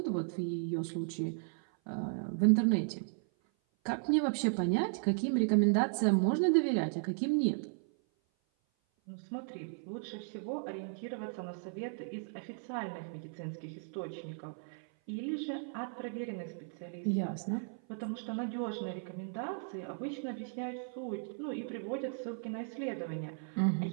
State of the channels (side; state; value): left; silent; 54 dB below the other